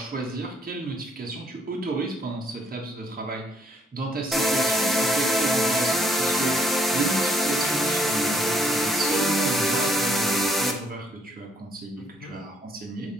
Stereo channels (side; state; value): both; normal; correlation 0.68